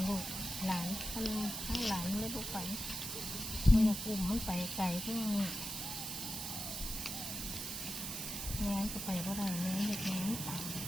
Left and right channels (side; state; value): right; noise; hiss, 4 dB below the sound